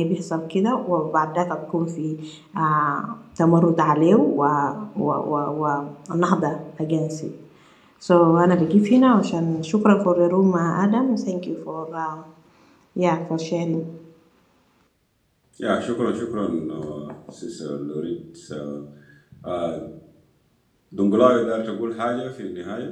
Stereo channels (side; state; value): both; identical; correlation 1.00